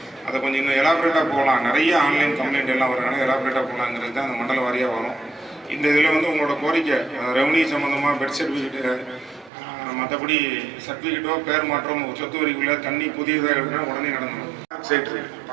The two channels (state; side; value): drops out; left; at 9.5 s